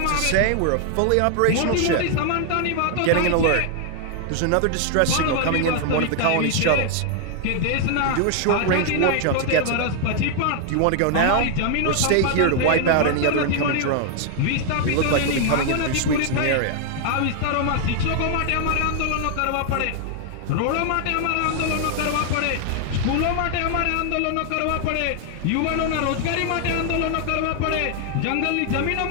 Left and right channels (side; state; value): both; different; correlation 0.00